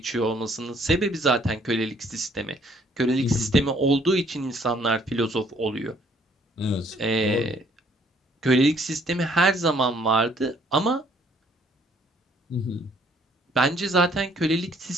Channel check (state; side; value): normal; both; correlation 0.63